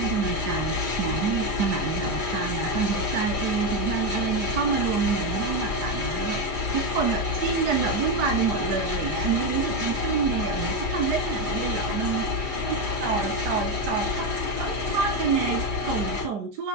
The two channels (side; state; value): left; late; 4.9 ms